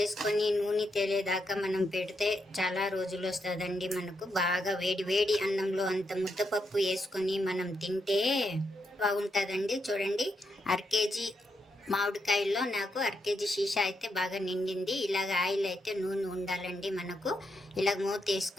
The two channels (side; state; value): both; normal; correlation 0.81